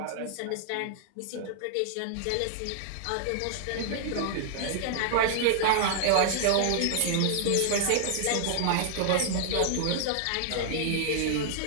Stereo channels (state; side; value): different; both; correlation -0.01